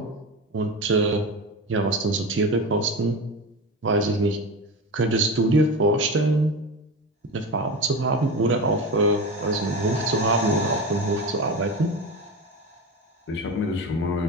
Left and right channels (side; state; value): both; normal; correlation 0.25